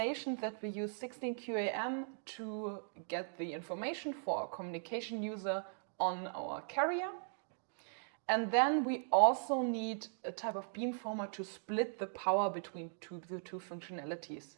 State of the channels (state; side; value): silent; left; digital silence